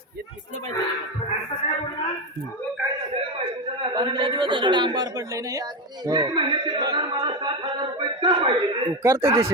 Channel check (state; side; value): normal; both; correlation 0.14